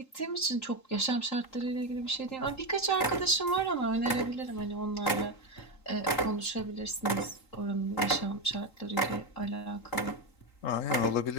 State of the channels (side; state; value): right; late; 3.8 ms